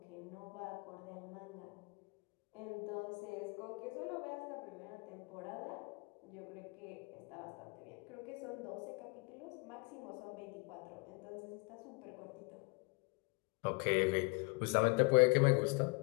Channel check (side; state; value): right; quieter; 30.8 dB